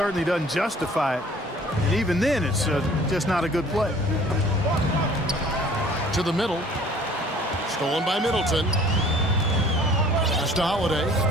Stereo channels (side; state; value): both; normal; correlation 0.53